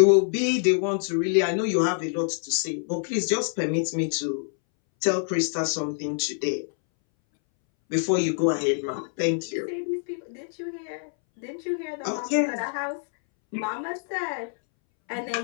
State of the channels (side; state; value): right; silent; 61 dB below the other